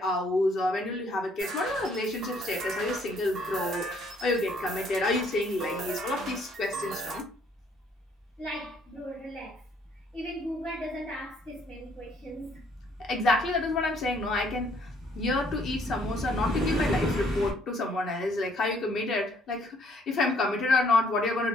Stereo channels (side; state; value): both; normal; correlation 0.64